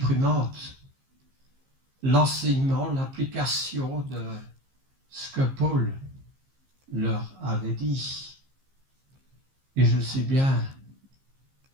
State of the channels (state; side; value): late; left; 15 ms